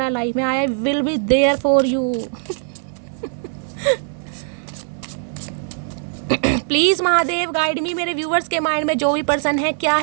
है लाइफ में। I will be there for you. Please Mahadev guide me, मेरे व्यूवर्स के माइंड में जो भी पर्सन है क्या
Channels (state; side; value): silent; left; digital silence